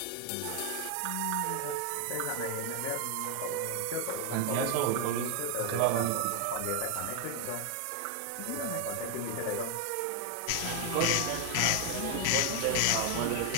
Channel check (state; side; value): different; both; correlation 0.00